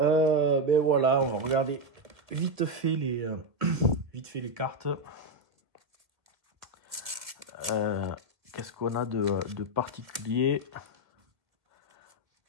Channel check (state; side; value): late; left; 1.5 ms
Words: voilà, on va regarder vite fait les cartes. Qu'est-ce qu'on a de particulier?